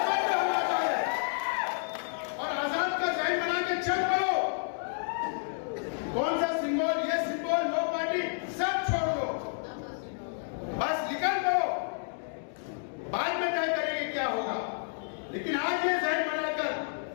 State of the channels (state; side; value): silent; right; digital silence